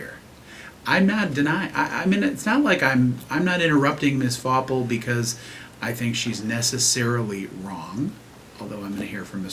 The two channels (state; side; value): identical; both; correlation 1.00